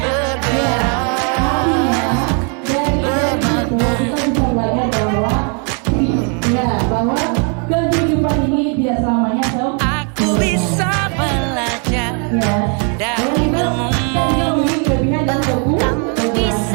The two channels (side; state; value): left; quieter; 39.5 dB